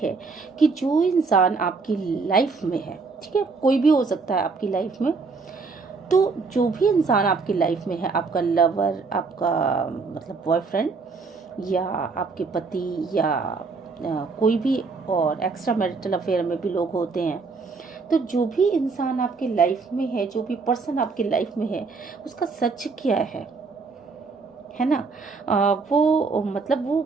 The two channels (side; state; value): left; quieter; 4.4 dB